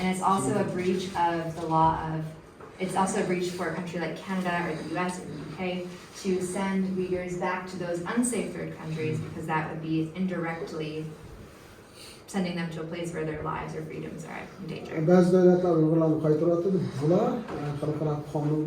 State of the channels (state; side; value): identical; both; correlation 1.00